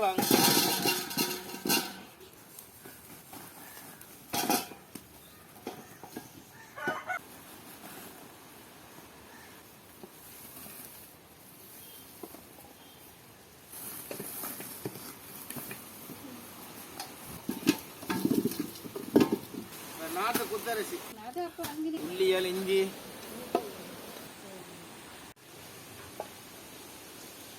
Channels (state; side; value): identical; both; correlation 1.00